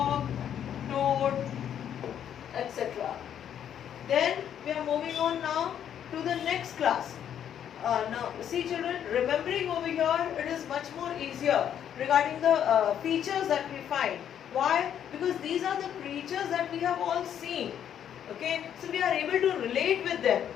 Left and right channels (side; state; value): right; quieter; 9.5 dB